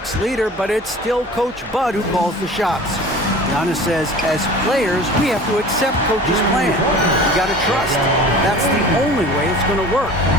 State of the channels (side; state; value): both; normal; correlation 0.41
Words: leader, but it's still Coach Bud who calls the shots. Giannis says, as players, we have to accept Coach's plan. You got to trust. That's the only way it's going to work.